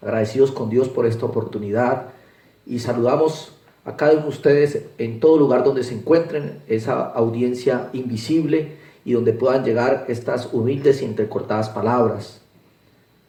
Agradecidos con Dios por esta oportunidad y saludamos a cada uno de ustedes en todo lugar donde se encuentren, esa audiencia invisible y donde puedan llegar estas humildes y entrecortadas palabras.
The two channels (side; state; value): both; identical; correlation 1.00